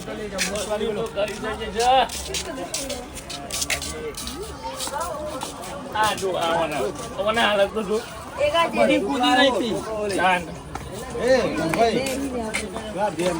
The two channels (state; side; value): identical; both; correlation 1.00